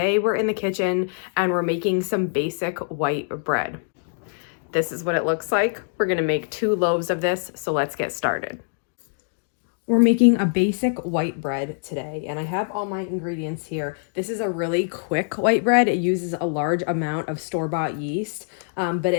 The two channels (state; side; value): silent; right; digital silence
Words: we're in the kitchen and we're making some basic white bread. This is what it looks like. We're gonna make 2 loaves of this, so let's get started. We're making a basic white bread today, and I have all my ingredients here. This is a really quick white bread. It uses a large amount of store-bought yeast, but